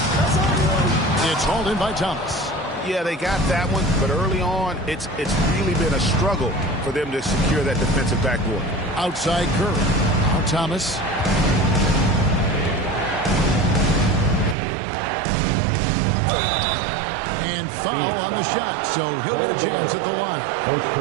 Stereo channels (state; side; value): drops out; left; at 14.6 s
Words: It's hauled in by Thomas. Yeah, they got that one, but early on, it's really been a struggle for them to secure that defensive backboard. Outside Curry. Now Thomas. And foul on the shot, so he'll get a chance at the line. First